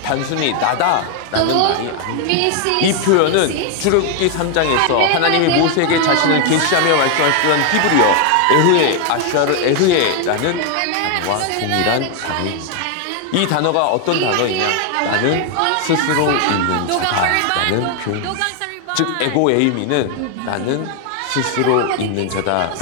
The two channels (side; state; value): both; different; correlation 0.01